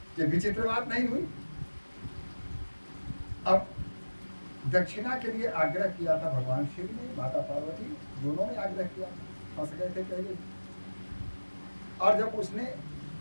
ये विचित्र बात नहीं हुई। अब दक्षिणा के लिए आग्रह किया था भगवान शिव ने, माता पार्वती दोनों ने आग्रह किया, फंस गए थे पहले। और जब उसने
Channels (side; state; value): both; inverted; correlation -1.00